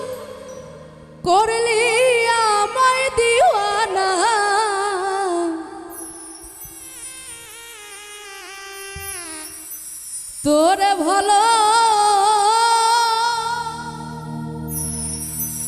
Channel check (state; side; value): identical; both; correlation 1.00